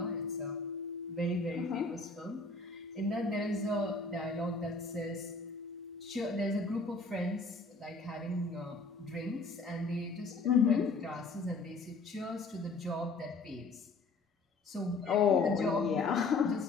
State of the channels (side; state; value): right; quieter; 3.8 dB